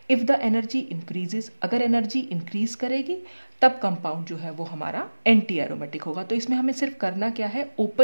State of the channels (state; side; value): inverted; both; correlation -1.00